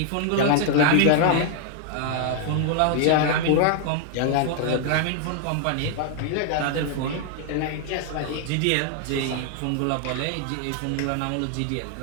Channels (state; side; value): different; both; correlation 0.00